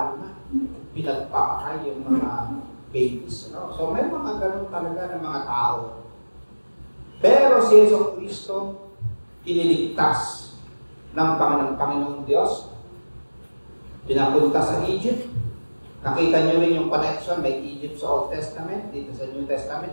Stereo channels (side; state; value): both; inverted; correlation -1.00